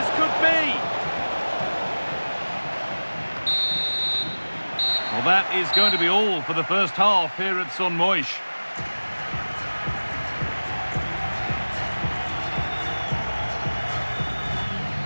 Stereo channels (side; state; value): both; inverted; correlation -1.00